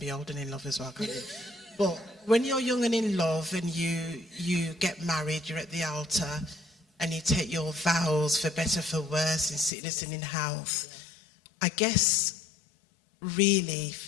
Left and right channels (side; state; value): right; drops out; at 9.7 s